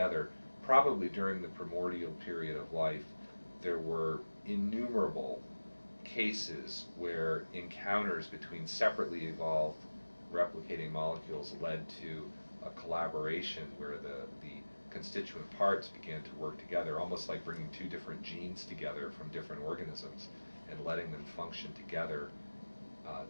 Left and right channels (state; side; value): inverted; both; correlation -1.00